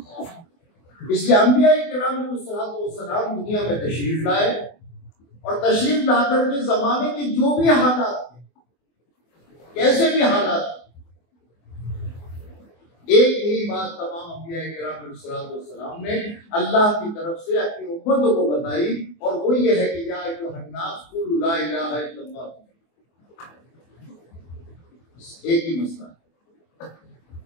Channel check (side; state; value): right; late; 24 ms